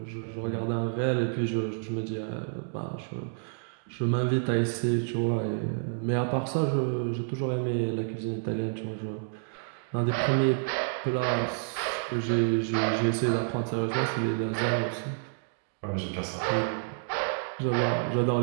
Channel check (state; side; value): silent; left; digital silence